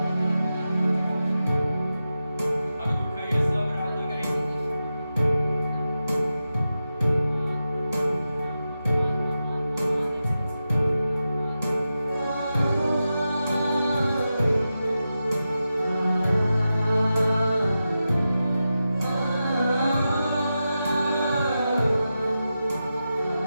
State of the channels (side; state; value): both; inverted; correlation -0.91